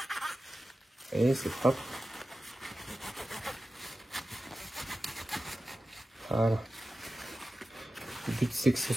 Et c'est propre. Voilà. Le but c'est que ce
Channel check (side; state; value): both; normal; correlation 0.94